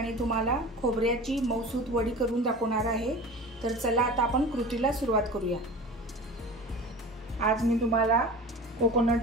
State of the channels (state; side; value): normal; both; correlation 0.36